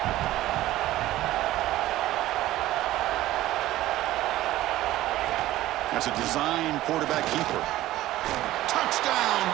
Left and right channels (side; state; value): left; quieter; 15.4 dB